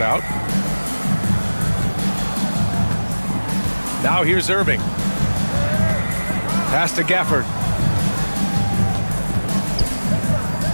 out. Now here's Irving. Pass to Gafford.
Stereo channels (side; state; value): both; inverted; correlation -1.00